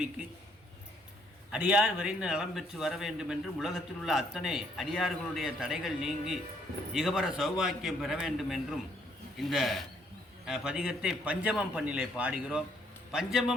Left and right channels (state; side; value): normal; both; correlation 0.68